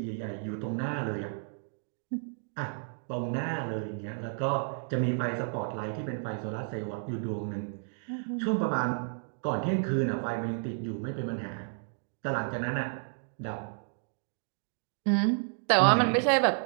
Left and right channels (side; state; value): left; silent; 57 dB below the other